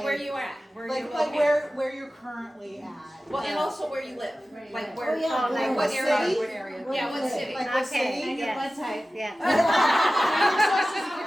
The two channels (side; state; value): both; normal; correlation 0.95